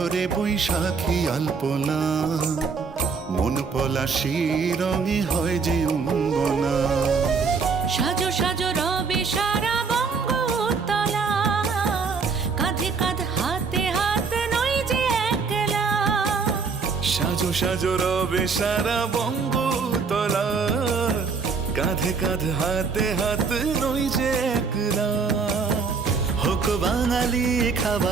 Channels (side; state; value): left; quieter; 5.1 dB